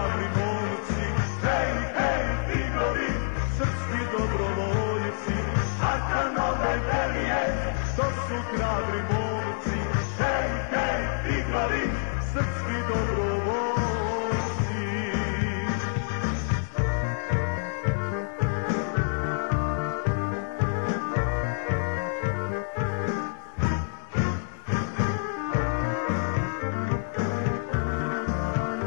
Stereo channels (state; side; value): silent; right; digital silence